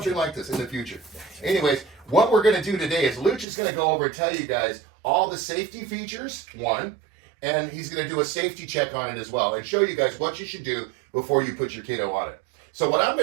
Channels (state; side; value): drops out; left; at 3.5 s